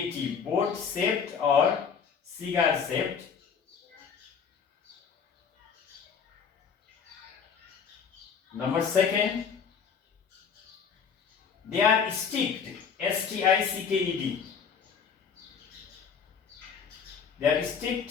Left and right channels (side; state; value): right; quieter; 6.5 dB